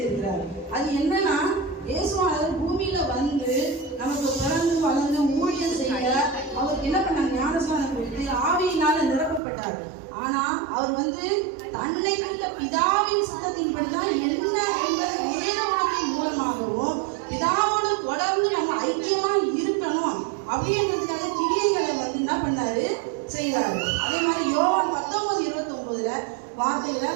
அது என்னன்னா, இயேசுவானவர் பூமியில வந்து நமக்கு பிறந்து வளர்ந்து ஊழியம் செய்ய அவருக்கு என்ன பண்ணாங்க, ஞானஸ்நானம் கொடுத்து ஆவியினால நிரப்பப்பட்டார். ஆனா அவர் வந்து தன்னை வைத்த பிதாவின் சத்தத்தின்படிதான் என்ன என்பது வேத வாக்கின் மூலமாகவும் பிதாவோடு தொடர்ந்து நம்ம ஐக்கியமா இருக்கணும் அப்படின்றதுக்காக கிரியைகளை வந்து என்ன பண்ணாரு, செய்யறாரு. அதே மாதிரி யோவான் 19:29 வார்த்தைகளை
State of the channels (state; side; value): drops out; left; at 9.4 s